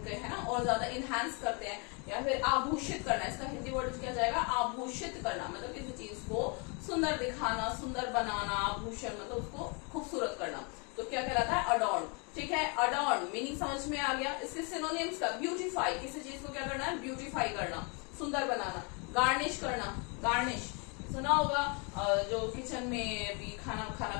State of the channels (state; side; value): quieter; right; 33.8 dB